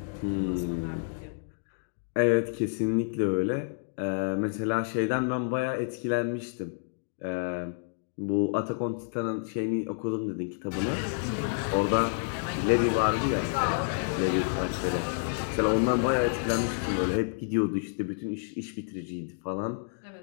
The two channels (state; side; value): silent; right; digital silence